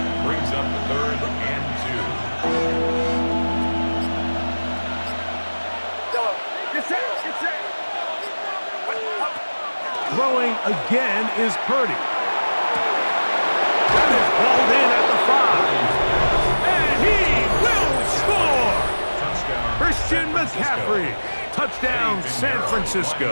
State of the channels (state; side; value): inverted; both; correlation -1.00